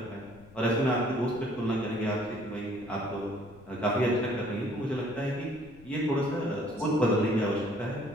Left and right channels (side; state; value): left; noise; rumble, 22 dB below the sound